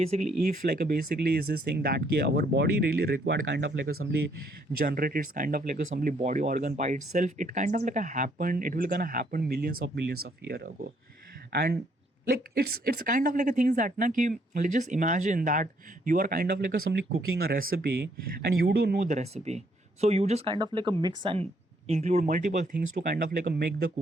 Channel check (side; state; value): both; normal; correlation 0.69